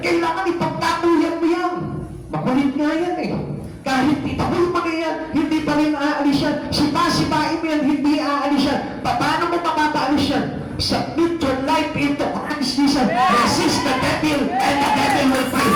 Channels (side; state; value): both; identical; correlation 1.00